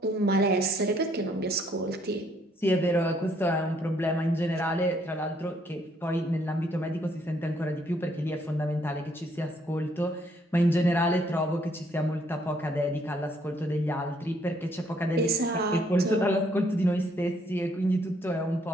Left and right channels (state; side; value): normal; both; correlation 0.68